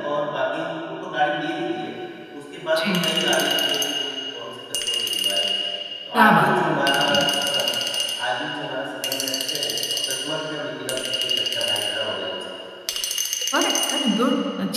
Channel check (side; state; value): both; identical; correlation 1.00